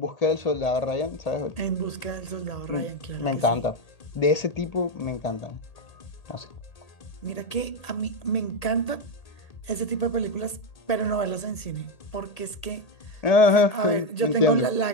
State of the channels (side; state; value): right; late; 1.8 ms